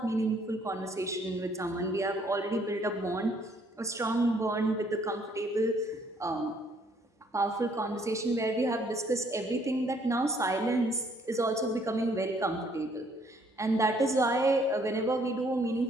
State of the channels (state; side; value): normal; both; correlation 0.64